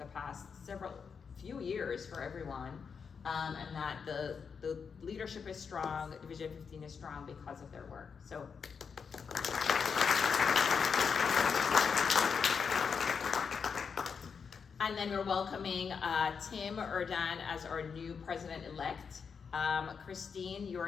past few years for everyone. And that the leadership is strong, Division 15 is strong because of their work. So. And then we're welcoming Tim Erdan as our new president-elect. Christine,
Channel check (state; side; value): quieter; right; 6.1 dB